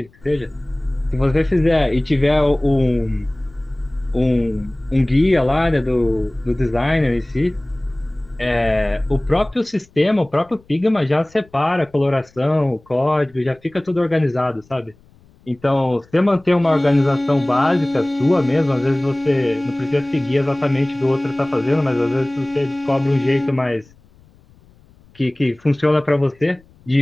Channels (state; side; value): noise; left; rumble, 29 dB below the sound